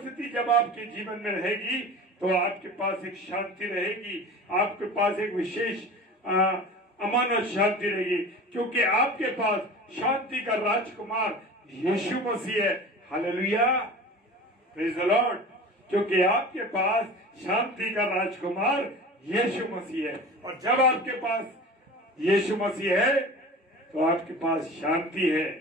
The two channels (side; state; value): both; normal; correlation 0.36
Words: जब आपके जीवन में रहेगी तो आपके पास एक शांति रहेगी, आपके पास एक विशेष अमानत शांति रहेगी, क्योंकि आपके पास शांति का राजकुमार यीशु मसीह है। Hallelujah, praise the Lord. क्योंकि आपके पास शांति का राजकुमार यीशु मसीह है, और जब आपके पास यीशु मसीह है तो आपके पास शांति है।